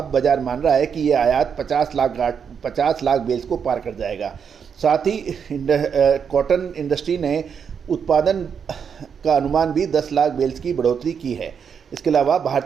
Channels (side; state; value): left; quieter; 7.0 dB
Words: बाजार मान रहा है कि ये आयात 50 लाख बेल्स को पार कर जाएगा। साथ ही कॉटन इंडस्ट्री ने उत्पादन का अनुमान भी 10 लाख बेल्स की बढ़ोतरी की है। इसके अलावा